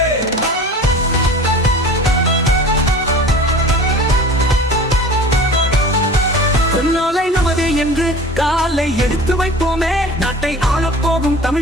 நாளை நமது என்று காலை எடுத்து வைப்போமே, நாட்டை ஆளப்போகும்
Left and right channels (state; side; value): normal; both; correlation 0.40